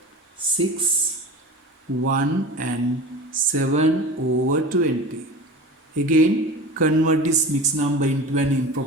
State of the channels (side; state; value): both; normal; correlation 0.34